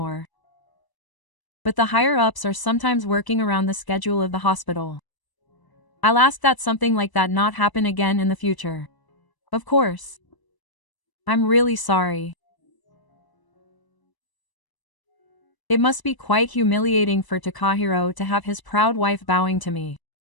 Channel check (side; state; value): right; late; 1.0 ms